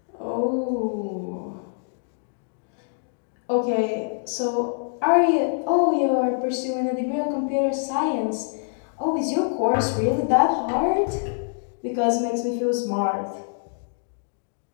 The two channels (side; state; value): right; silent; digital silence